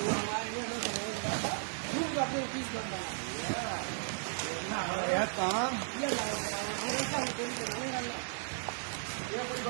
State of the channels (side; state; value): left; silent; 54 dB below the other